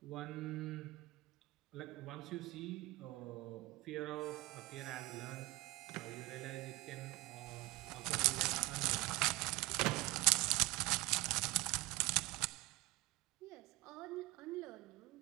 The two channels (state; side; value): quieter; left; 21.4 dB